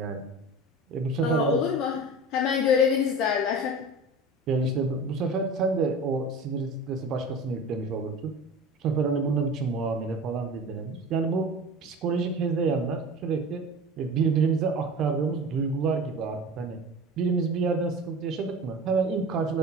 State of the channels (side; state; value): both; normal; correlation 0.35